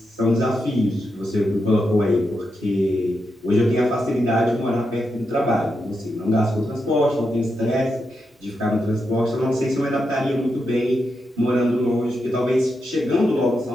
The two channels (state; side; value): normal; both; correlation 0.85